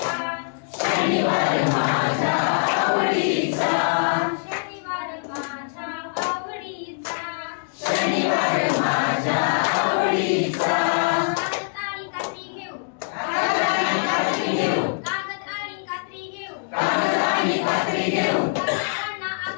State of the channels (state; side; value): silent; right; digital silence